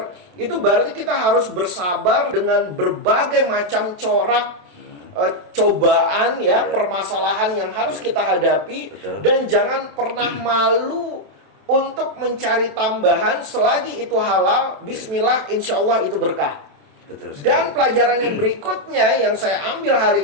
itu berarti kita harus bersabar dengan berbagai macam corak cobaan ya, permasalahan yang harus kita hadapi. Betul. Dan jangan pernah malu untuk mencari tambahan selagi itu halal. Bismillah, insya Allah itu berkah. Betul sekali. Dan pelajaran yang berikutnya yang saya ambil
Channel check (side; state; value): left; late; 27 ms